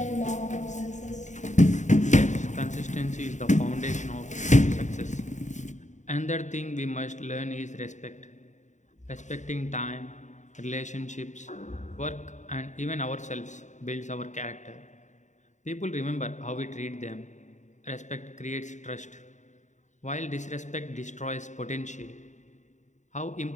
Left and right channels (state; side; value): late; right; 0.35 ms